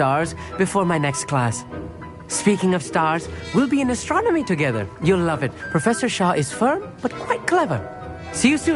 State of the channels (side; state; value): both; identical; correlation 1.00